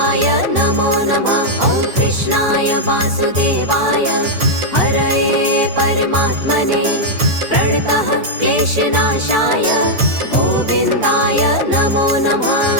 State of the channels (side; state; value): left; late; 5.6 ms